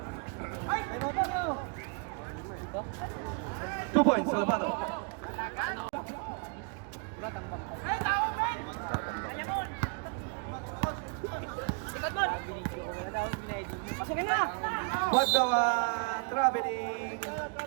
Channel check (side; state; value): left; quieter; 35.4 dB